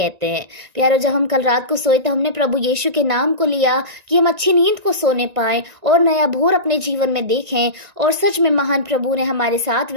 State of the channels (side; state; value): left; late; 1.9 ms